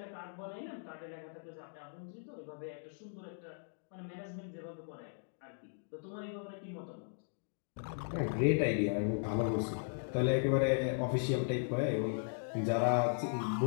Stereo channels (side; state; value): right; silent; digital silence